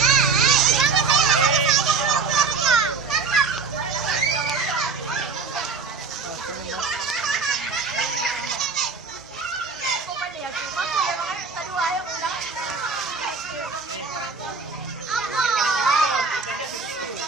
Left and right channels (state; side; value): quieter; left; 4.8 dB